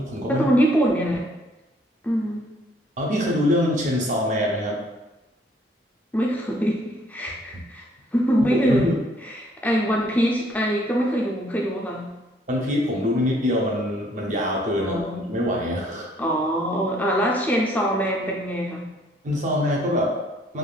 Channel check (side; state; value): both; normal; correlation 0.63